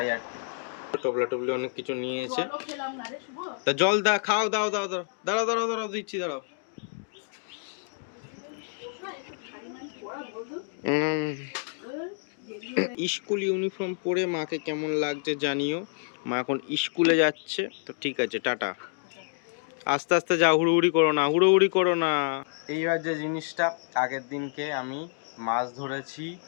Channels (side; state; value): right; silent; digital silence